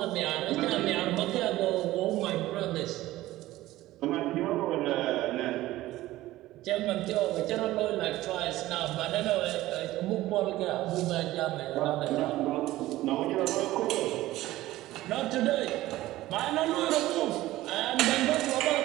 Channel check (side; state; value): left; quieter; 16.3 dB